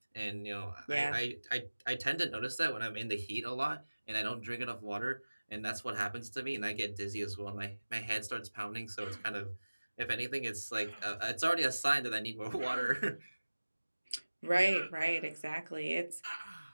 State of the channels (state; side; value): inverted; both; correlation -1.00